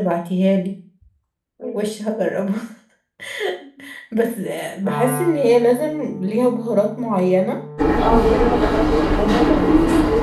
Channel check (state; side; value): identical; both; correlation 1.00